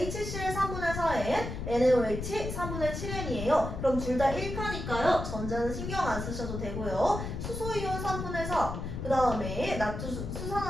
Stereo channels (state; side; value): noise; left; rumble, 5 dB below the sound